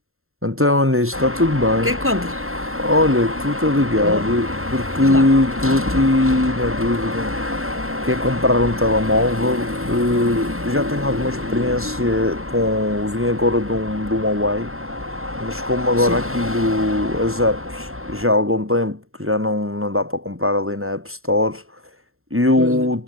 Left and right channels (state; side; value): late; left; 0.62 ms